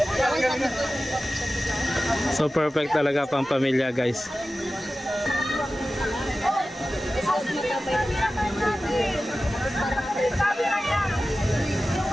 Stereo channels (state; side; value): normal; both; correlation 0.95